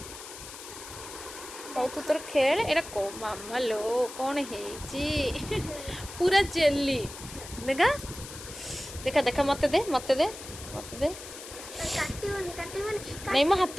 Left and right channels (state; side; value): noise; left; hiss, 13 dB below the sound